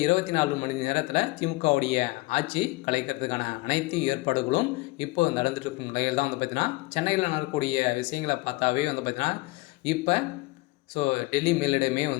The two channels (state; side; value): quieter; right; 22.5 dB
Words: 24 மணி நேரத்தில் திமுகவுடைய ஆட்சி கலைக்கிறதுக்கான அனைத்து ஏற்பாடுகளும் இப்போ நடந்துட்டு இருக்கும் நிலையில் தான் பார்த்தீங்கன்னா சென்னையில் நடக்கக்கூடிய விஷயங்களை பார்த்தாவே பார்த்தீங்கன்னா இப்போ டெல்லி மேலிடமே